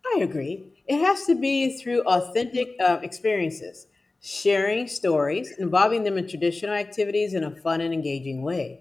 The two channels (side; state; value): right; quieter; 3.3 dB